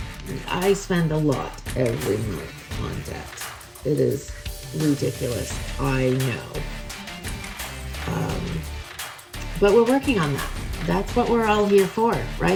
And I spend a lot every month on debt. It is ridiculous, I know. But we're working on that. That's what we're all here for,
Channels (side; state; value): both; identical; correlation 1.00